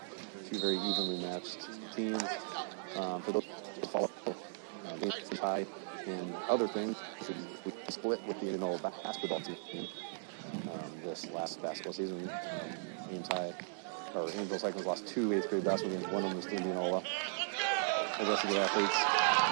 two very evenly matched teams. For those who follow Ames High and other things, we split with the Indianola basketball team this last basketball season. Ames High, or Angel Cyclones lost 2 8th grade basketball games. One of them was to Indianola. The rest of the athletes.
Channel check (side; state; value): left; silent; digital silence